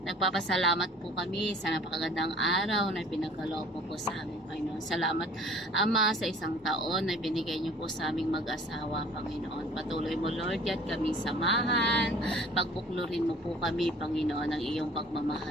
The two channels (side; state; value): both; normal; correlation 0.50